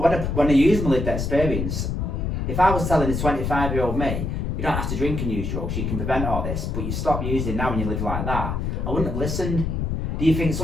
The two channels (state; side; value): noise; left; rumble, 2 dB below the sound